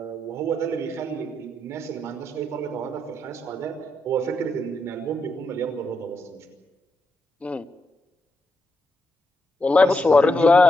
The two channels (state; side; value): normal; both; correlation 0.83